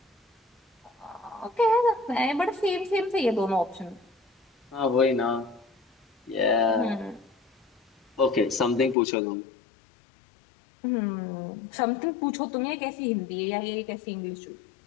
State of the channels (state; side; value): drops out; right; at 9.0 s